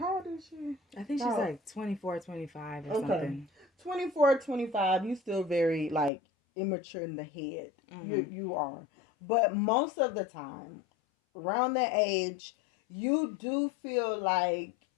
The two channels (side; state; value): right; drops out; at 6.1 s